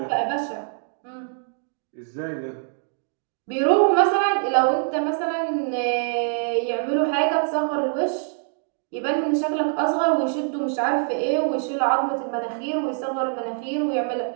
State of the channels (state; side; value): silent; left; digital silence